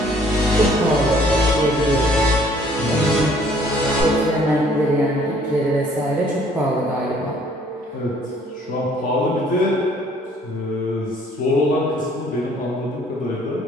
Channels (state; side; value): normal; both; correlation 0.59